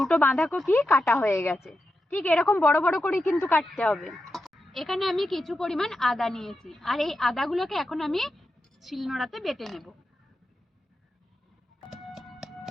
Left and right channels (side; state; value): both; normal; correlation 0.89